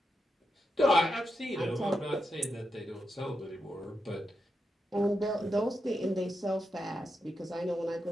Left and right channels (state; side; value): normal; both; correlation 0.86